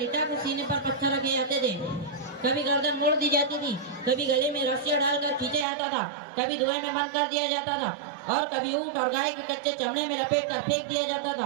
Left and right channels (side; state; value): left; drops out; at 5.7 s